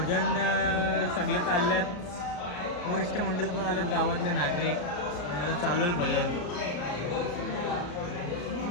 सगळे चालल्यात. वरिष्ठ मंडळ पण आलेत, गावातले नागरिक. आणि आता चालू आहे भजन.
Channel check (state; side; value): late; right; 34 ms